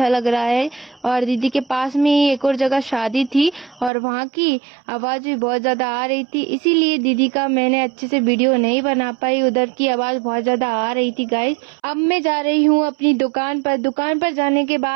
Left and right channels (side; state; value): left; drops out; at 3.9 s